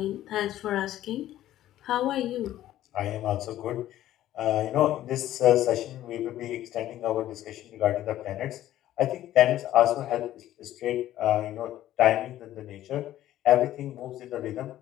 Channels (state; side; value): quieter; right; 13.4 dB